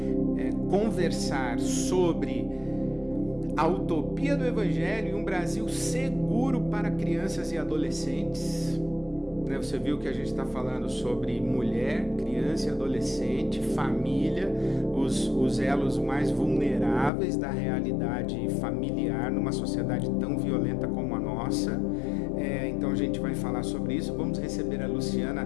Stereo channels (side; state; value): right; drops out; at 17.1 s